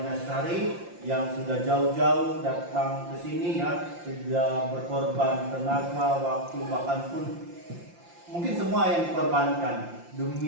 Sari yang sudah jauh-jauh datang ke sini ya, sudah berkorban tenaga, waktu, bahkan pun mungkin semua yang dikorbankan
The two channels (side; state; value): left; late; 5.8 ms